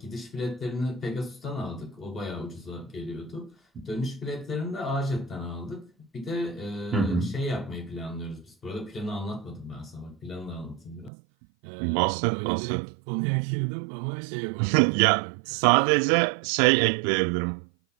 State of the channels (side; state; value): left; drops out; at 11.1 s